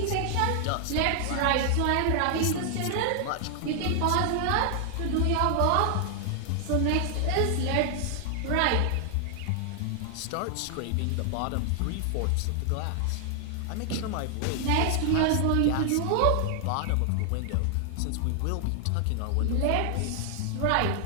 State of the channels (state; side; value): different; both; correlation 0.00